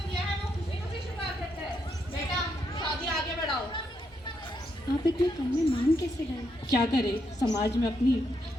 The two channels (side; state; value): both; normal; correlation 0.79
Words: दिया है वो खुशी खुशी स्वीकार करते हैं। बेटा शादी आगे बढ़ाओ। आप इतने कम में मान कैसे गए? क्या करे, समाज में अपनी